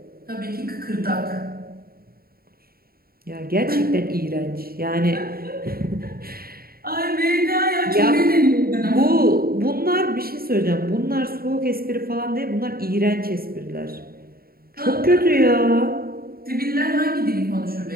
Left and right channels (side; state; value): left; late; 0.43 ms